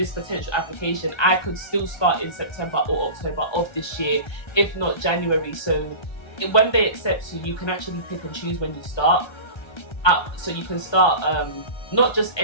potential application, I could still start in September or October of this year, if not January. So when they accept you, you can actually pick and choose when you start. So you can start not just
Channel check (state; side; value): late; right; 1.3 ms